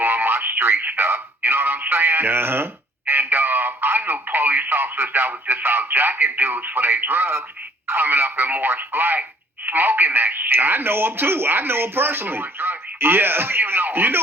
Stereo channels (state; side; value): normal; both; correlation 0.59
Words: my street stuff. You know what I'm saying? Uh-huh. And I knew police officers that was just out jacking dudes for their drugs, coming up in Morris Black, smoking that shit. I know him too. I know him personally. Yeah. I know you know him. You